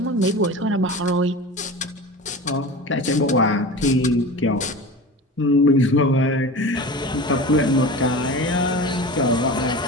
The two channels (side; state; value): both; normal; correlation 0.32